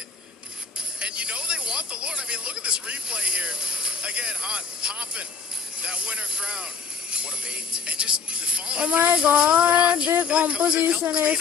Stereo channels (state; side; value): quieter; right; 5.6 dB